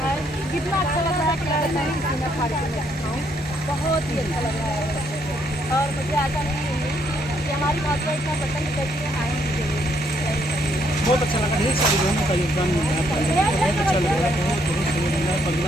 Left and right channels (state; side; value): normal; both; correlation 0.71